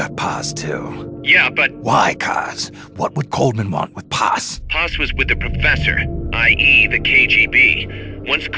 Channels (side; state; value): both; identical; correlation 1.00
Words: Paz, too. Yeah, but... Why, Kaz? What would Coleman want with Paz? Paz was with the professor, i.e. the KGB. Once